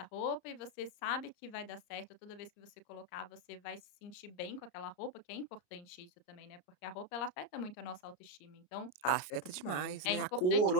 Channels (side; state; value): right; late; 33 ms